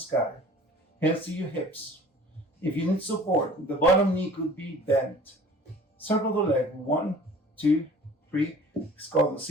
Hands to your hips. If you need support, the bottom knee could be bent. Circle the leg. 1, 2, 3. It's called the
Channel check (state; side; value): normal; both; correlation 0.47